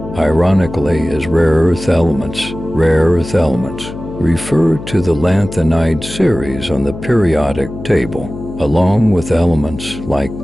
ironically, is rare earth elements. Rare earth elements refer to the lanthanide series on the periodic table, along with elements like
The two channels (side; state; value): left; noise; hum, 11 dB below the sound